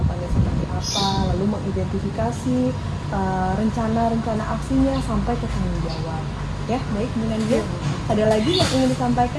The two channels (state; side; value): identical; both; correlation 1.00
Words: seperti apa, lalu mengidentifikasi rencana-rencana aksinya sampai ke tanggung jawab. Ya, baik Bu Nandia. Ada lagi yang ingin